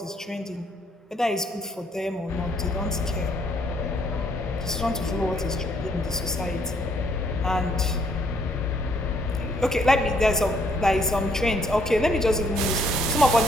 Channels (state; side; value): normal; both; correlation 0.67